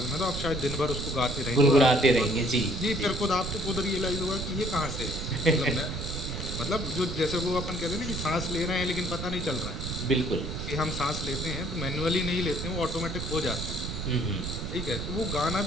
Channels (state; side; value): noise; right; rumble, 5 dB below the sound